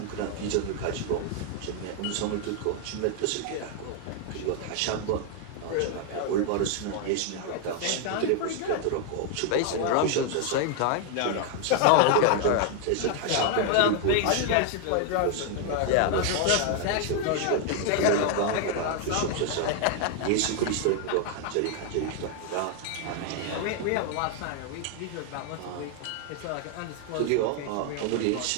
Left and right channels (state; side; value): different; both; correlation 0.00